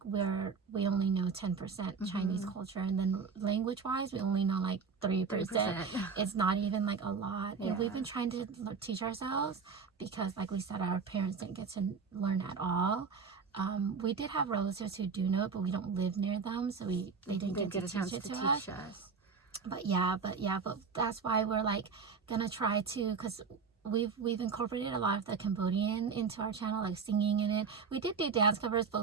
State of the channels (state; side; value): quieter; left; 5.5 dB